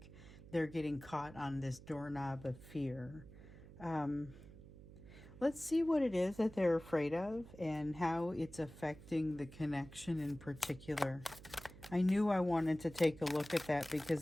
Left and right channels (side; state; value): right; noise; hum, 17 dB below the sound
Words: they're getting caught on this doorknob of fear. Let's see what it is that they're afraid of and how it's affecting the connection in particular. I knew I wanted to take a look at that